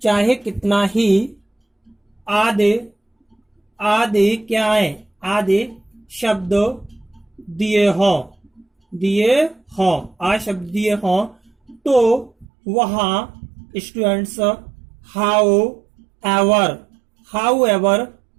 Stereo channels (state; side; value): drops out; left; at 12.5 s